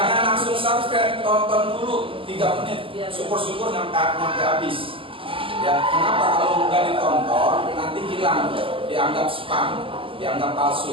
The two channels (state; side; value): late; left; 0.26 ms